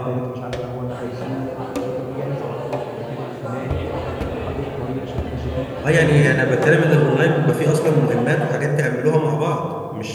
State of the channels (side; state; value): both; identical; correlation 1.00